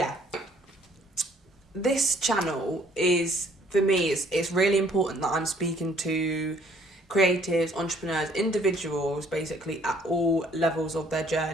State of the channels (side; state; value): both; normal; correlation 0.61